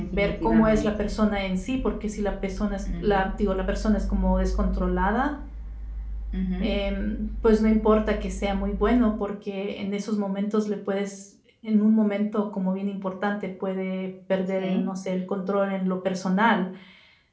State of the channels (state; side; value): identical; both; correlation 1.00